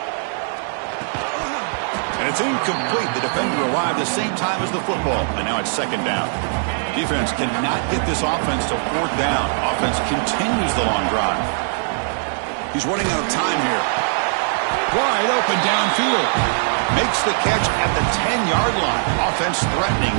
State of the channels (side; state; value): left; silent; digital silence